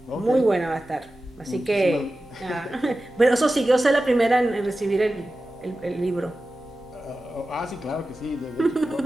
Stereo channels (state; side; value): normal; both; correlation 0.94